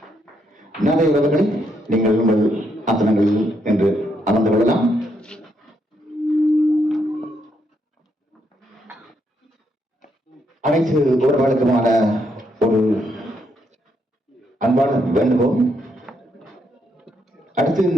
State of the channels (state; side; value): normal; both; correlation 0.76